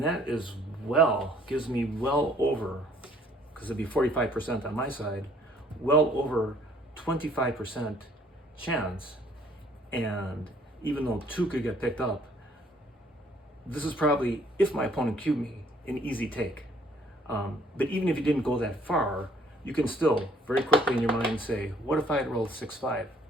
that is gives me well over, because it'd be 45% on my side, well over 25% chance. And even though 2 could get picked up, this is probably, if my opponent cubed me, an easy take. But even if you didn't go that far, you can still very quickly in your mind say, what if I had rolled 6-5?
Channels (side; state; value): both; normal; correlation 0.61